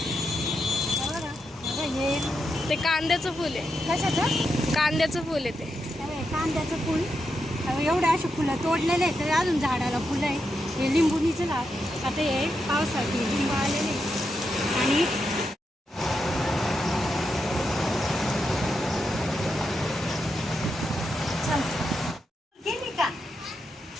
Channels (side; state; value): both; normal; correlation 0.85